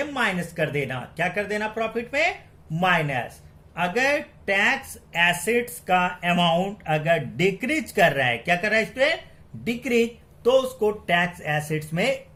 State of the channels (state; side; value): identical; both; correlation 1.00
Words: माइनस कर देना। क्या कर देना प्रॉफिट में, माइनस। अगर टैक्स एसेट्स का अमाउंट अगर डिक्रीज कर रहा है, क्या कर रहा है स्टूडेंट, डिक्रीज, तो उसको टैक्स एसेट्स में